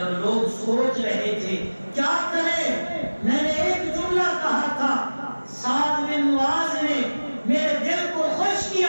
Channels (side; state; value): both; inverted; correlation -1.00